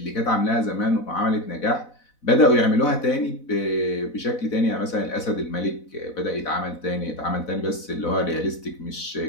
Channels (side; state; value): right; late; 4.0 ms